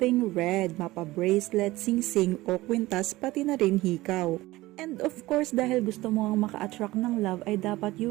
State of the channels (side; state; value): left; quieter; 18.5 dB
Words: red, mapa-bracelet, sing-sing o kwintas pati na rin hikaw. And of course, dahil gusto mo ang maka-attract ng love ay dapat